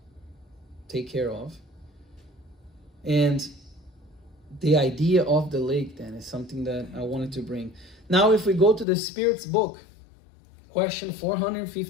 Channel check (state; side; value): drops out; right; at 8.8 s